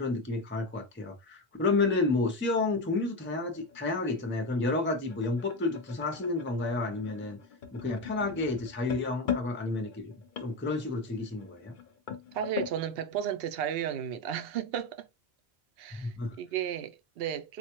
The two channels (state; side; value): normal; both; correlation 0.15